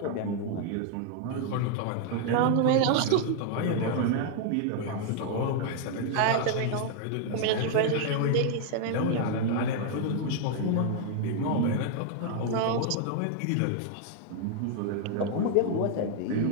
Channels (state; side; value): different; both; correlation 0.00